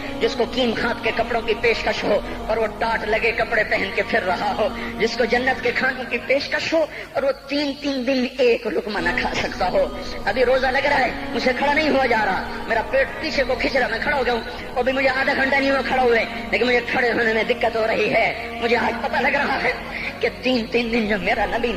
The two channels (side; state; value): both; identical; correlation 1.00